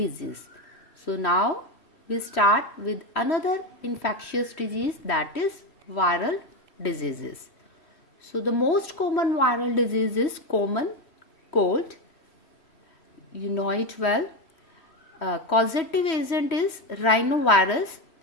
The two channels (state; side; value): late; right; 3.1 ms